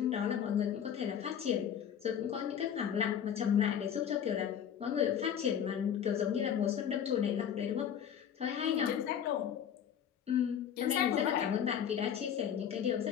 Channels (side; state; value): right; quieter; 8.9 dB